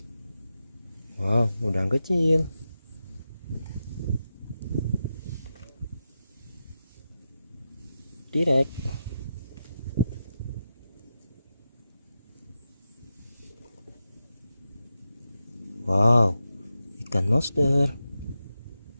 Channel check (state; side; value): inverted; both; correlation -0.89